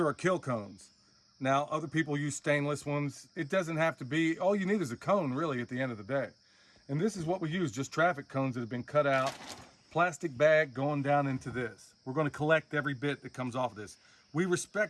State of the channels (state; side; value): identical; both; correlation 1.00